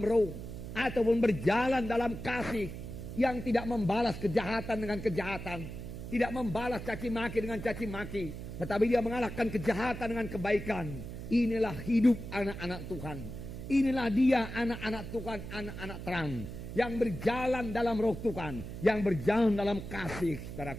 roh. Ataupun berjalan dalam kasih. Yang tidak membalas kejahatan dengan kejahatan. Tidak membalas caci maki dengan caci maki. Tetapi dia mengalahkan kejahatan dengan kebaikan. Inilah hidup anak-anak Tuhan. Inilah dia anak-anak Tuhan, anak-anak terang. Yang berjalan dalam roh Tuhan. Yang berjalan dalam kasih,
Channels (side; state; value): right; noise; hum, 9 dB below the sound